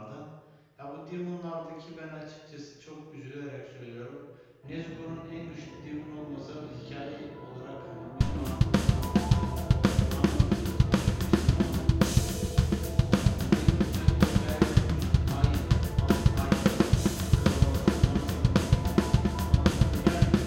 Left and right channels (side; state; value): both; identical; correlation 1.00